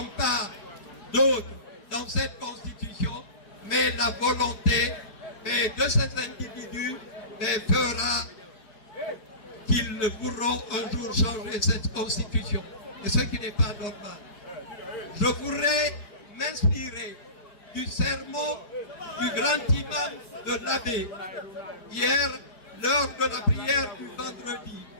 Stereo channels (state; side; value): late; right; 4.9 ms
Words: pas d'autre dans cette constitution, mais la volonté de ces individus fera qu'ils pourront un jour changer cette constitution. Et ce qui n'est pas normal. Je voudrais m'inspirer du sermon du grand imam de l'Abbé, hier, lors de la prière du vendredi,